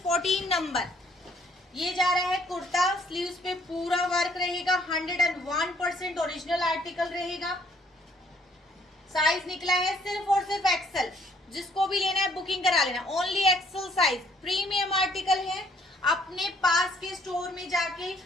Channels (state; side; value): normal; both; correlation 0.64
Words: 14 नंबर। ये जा रहा है कुर्ता, स्लीव्स पे पूरा वर्क रहेगा, 101% ओरिजिनल आर्टिकल रहेगा। साइज निकला है सिर्फ और सिर्फ एक्सेल। जिसको भी लेना है बुकिंग करा लेना, only XL size. Premium article है। अपने पास के स्टोर में जाके